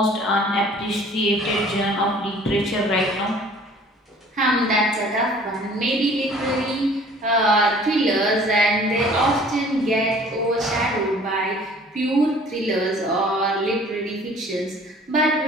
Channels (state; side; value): normal; both; correlation 0.52